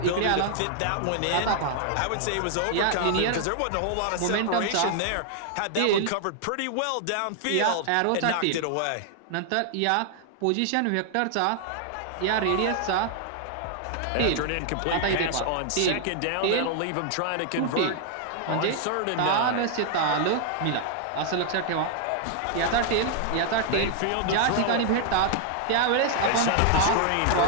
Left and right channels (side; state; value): both; different; correlation 0.00